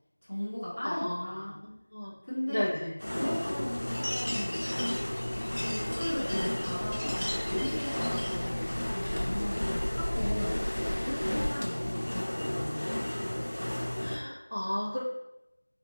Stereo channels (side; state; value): both; inverted; correlation -1.00